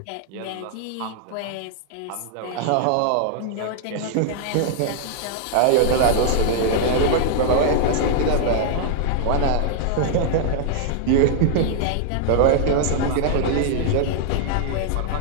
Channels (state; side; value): different; both; correlation -0.01